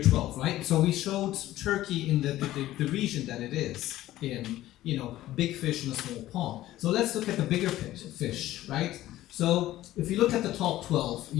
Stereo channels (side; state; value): right; quieter; 14.9 dB